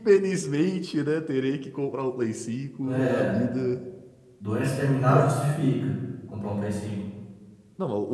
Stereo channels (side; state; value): both; identical; correlation 1.00